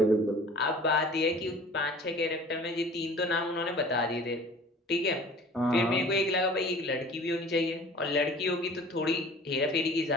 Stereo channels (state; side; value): normal; both; correlation 0.46